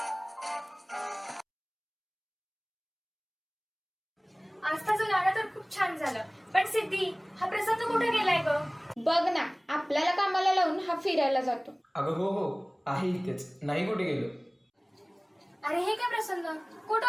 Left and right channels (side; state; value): both; identical; correlation 1.00